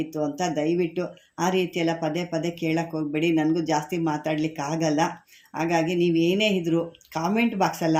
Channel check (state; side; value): identical; both; correlation 1.00